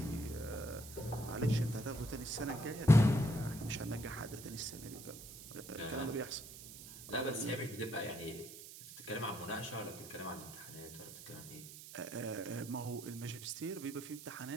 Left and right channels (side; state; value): right; noise; hiss, 13 dB below the sound